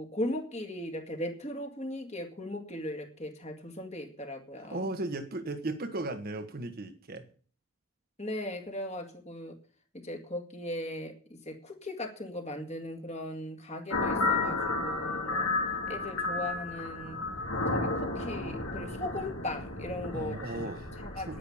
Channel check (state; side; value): normal; both; correlation 0.21